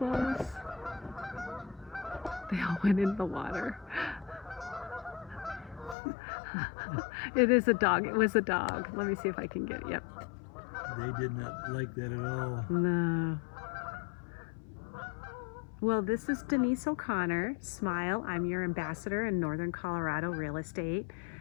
They all went in the water. It is a dog. It was a dog. Let me see if I can get it. Yep. They did not like that at all. No. Well, this is Denise O'Connor. Smile. I'm your ambassador in Northern Colorado real estate.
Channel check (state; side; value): drops out; right; at 6.0 s